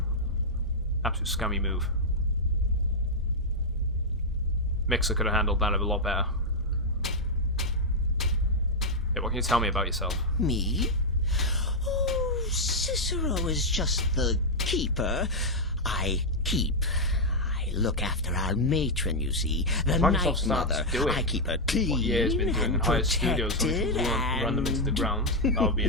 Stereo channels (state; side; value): normal; both; correlation -0.02